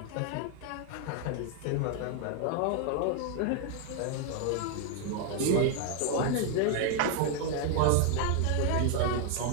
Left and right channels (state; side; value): different; both; correlation 0.00